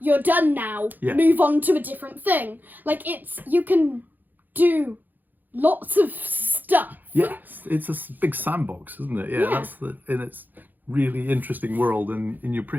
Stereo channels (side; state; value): left; late; 0.086 ms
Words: done now. Move on to a different thing. Like you can do lots of stuff. Yes, it's a big sandbox, isn't it? Yeah, that's in its really interesting world, and you're